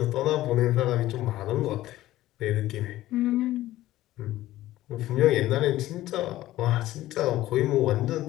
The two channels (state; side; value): quieter; right; 15.3 dB